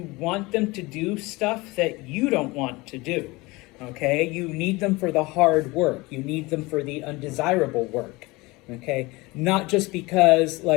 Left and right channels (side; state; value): right; quieter; 22.9 dB